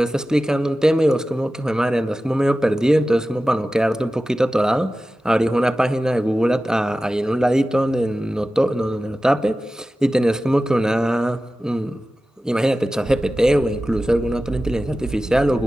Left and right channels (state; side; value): normal; both; correlation 0.95